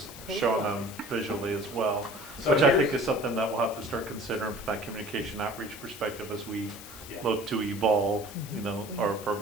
showing them visually as well, So which I here's- think is something that we'll have to start considering from that communication outreach perspective as we Yeah. look to evolve, you know, our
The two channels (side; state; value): left; noise; hiss, 15 dB below the sound